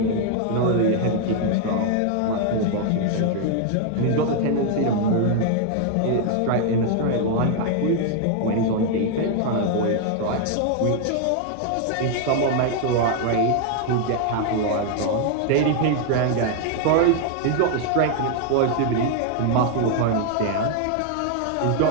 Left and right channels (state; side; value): different; both; correlation 0.00